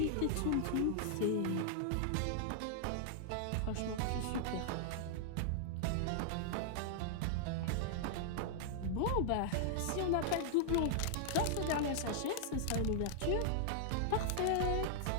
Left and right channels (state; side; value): different; both; correlation -0.01